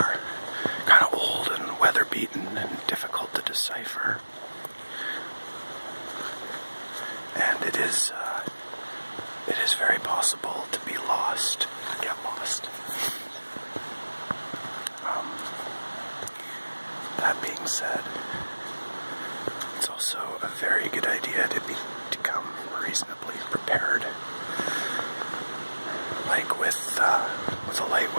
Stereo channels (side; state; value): both; inverted; correlation -1.00